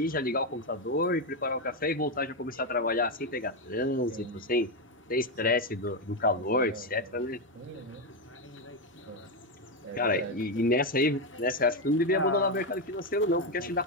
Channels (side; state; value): both; normal; correlation 0.07